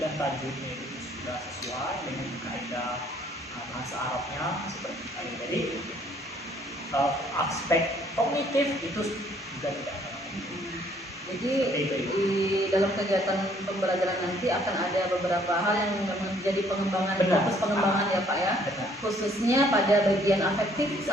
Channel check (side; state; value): both; normal; correlation 0.63